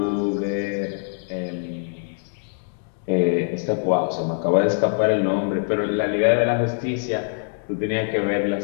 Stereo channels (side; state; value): right; silent; digital silence